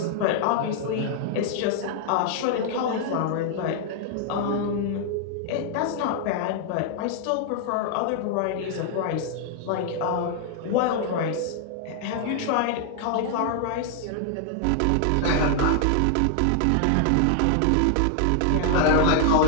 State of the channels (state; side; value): different; both; correlation 0.00